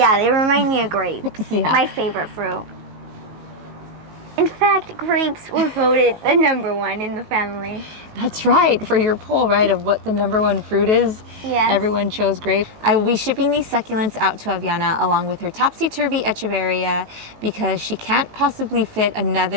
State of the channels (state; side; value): late; left; 19 ms